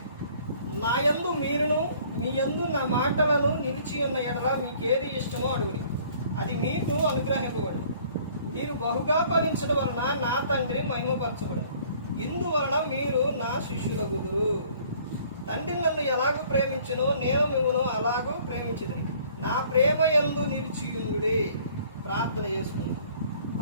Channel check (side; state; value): both; inverted; correlation -0.56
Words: నా యందు మీరును మీ యందు నా మాటలను నిలిచి ఉన్న ఎడల మీకేది ఇష్టమో అడుగుడి, అది మీకు అనుగ్రహింపబడు. మీరు బహుగా ఫలించడం వలన నా తండ్రి మహిమపరచబడు. ఇందువలన మీరు నా శిష్యులగుదురు. తండ్రి నన్ను ఎలాగూ ప్రేమించునో నేను మిమ్మల్ని అలాగూ ప్రేమించుదును. నా ప్రేమ యందు నిలిచియుండుడి. ప్రార్థన చేసుకుందాం.